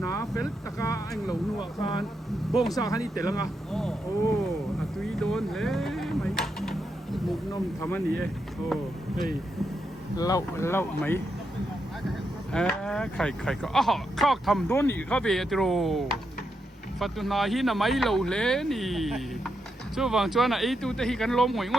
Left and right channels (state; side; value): normal; both; correlation 0.83